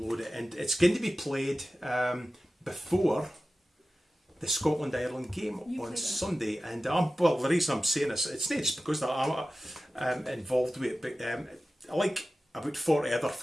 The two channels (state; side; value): normal; both; correlation 0.95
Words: it, and it's going to be played before the Scotland-Ireland game on Sunday. And the reason I'm saying this, it's not just because I'm involved with it, but like about 40 other